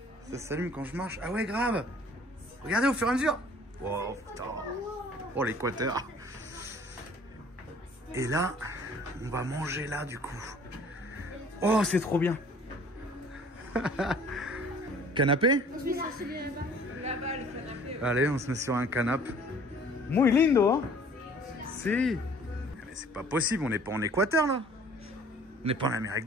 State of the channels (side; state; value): both; normal; correlation 0.52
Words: Ça s'allume quand je marche. Ah ouais, grave. Regardez au fur et à mesure. Wow, putain. Oh, l'équateur. Et là, on va manger là, du coup. Oh, c'est trop bien. Canapé? Là-bas, le canapé. Allez, on se met sur un canapé. Muy lindo, hein? Si. Mais c'est pas possible, on n'est pas en Équateur, là. On n'est pas en Amérique